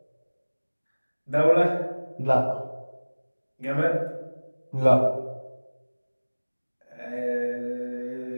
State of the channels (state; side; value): inverted; both; correlation -1.00